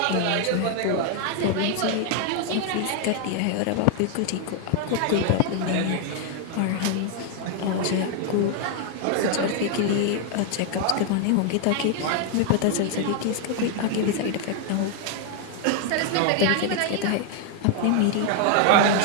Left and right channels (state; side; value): different; both; correlation 0.01